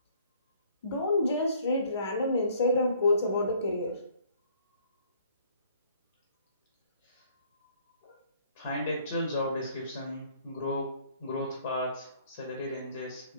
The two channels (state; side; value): inverted; both; correlation -0.60